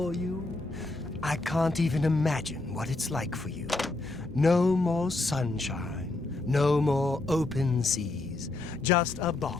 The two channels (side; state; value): right; quieter; 3.1 dB